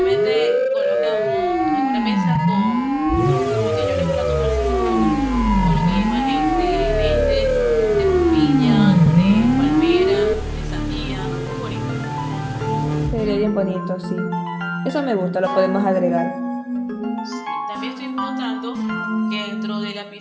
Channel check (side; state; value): both; identical; correlation 1.00